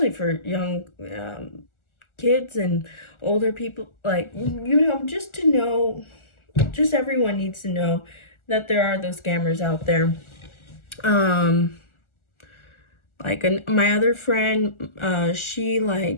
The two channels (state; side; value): late; right; 1.4 ms